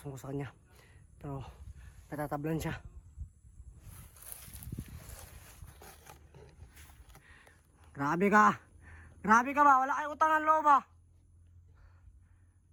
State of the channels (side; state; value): both; identical; correlation 1.00